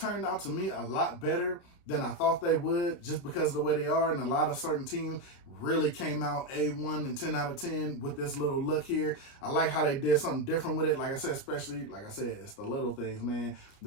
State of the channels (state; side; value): late; right; 29 ms